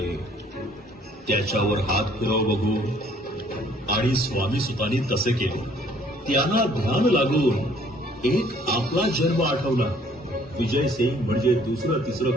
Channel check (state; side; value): normal; both; correlation 0.60